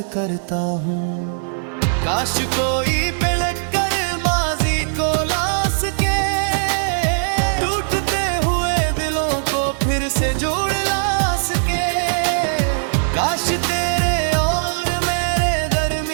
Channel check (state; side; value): silent; left; digital silence